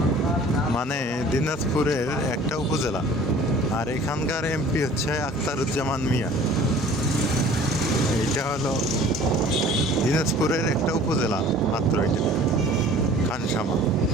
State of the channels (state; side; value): normal; both; correlation 0.48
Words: মানে দিনাজপুরের একটা উপজেলা, আর এখানকার এমপি হচ্ছে আখতারুজ্জামান মিয়া। এটা হলো দিনাজপুরের একটা উপজেলা মাত্র, এটা খানসামা।